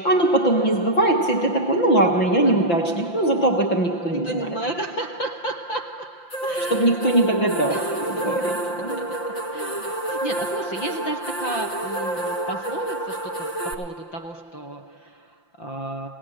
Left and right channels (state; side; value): late; right; 5.8 ms